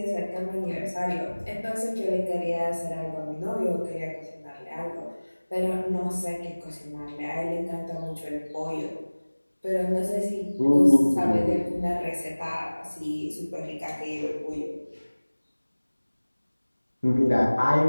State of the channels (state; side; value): inverted; both; correlation -1.00